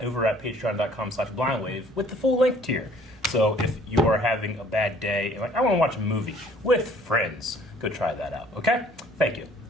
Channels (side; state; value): both; normal; correlation 0.56